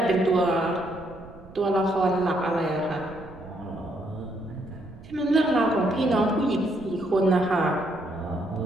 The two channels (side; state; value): right; noise; rumble, 18 dB below the sound